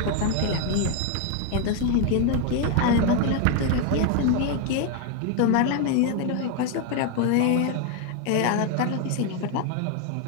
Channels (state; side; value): different; both; correlation 0.01